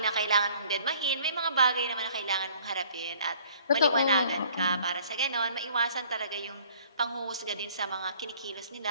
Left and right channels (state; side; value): inverted; both; correlation -0.56